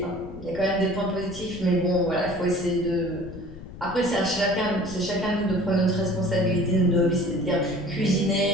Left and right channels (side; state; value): left; noise; rumble, 14 dB below the sound